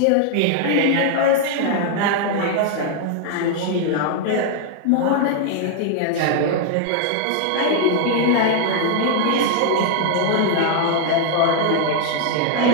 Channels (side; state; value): both; different; correlation 0.00